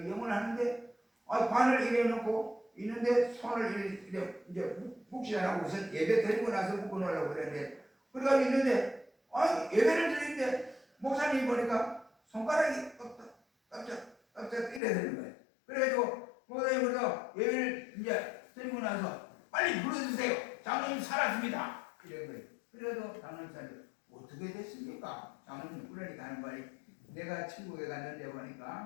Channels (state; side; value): drops out; right; at 14.8 s